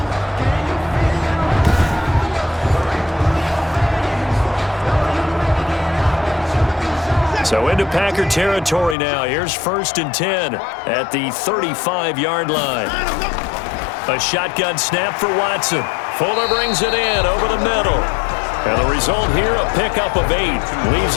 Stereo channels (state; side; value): drops out; right; at 9.0 s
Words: So into Packer territory now. Here's 1st and 10 at the 35-yard line. A shotgun snap for Watson. Fuller brings it in over the middle. And the result here, a pickup of 8. Leaves